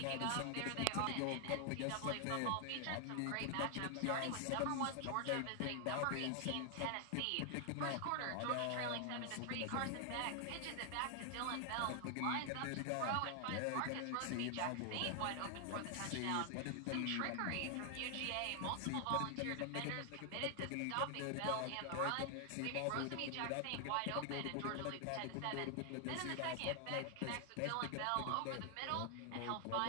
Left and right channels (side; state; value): both; different; correlation 0.00